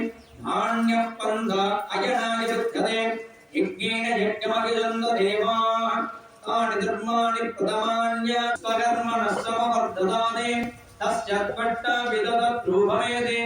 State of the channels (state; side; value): identical; both; correlation 1.00